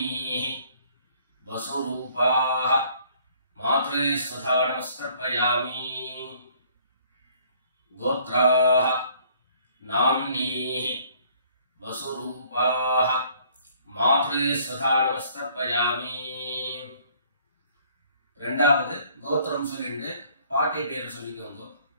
வசுரூபாஹ மாத்ரு ஸ்வதா நமஸ்தர்ப்பயாமி. கோத்ராஹ நாம்னீஹ வசுரூபாஹ மாத்ரு ஸ்வதா நமஸ்தர்ப்பயாமி. ரெண்டாவது கோத்திரம் சொல்லிட்டு பாட்டி பேர் சொல்லிக்கோங்க.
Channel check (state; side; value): inverted; both; correlation -0.60